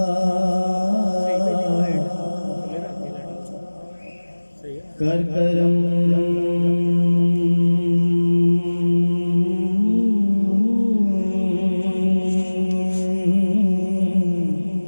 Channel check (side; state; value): both; inverted; correlation -1.00